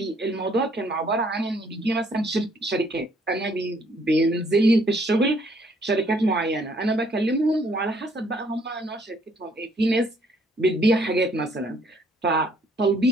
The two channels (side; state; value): both; normal; correlation 0.65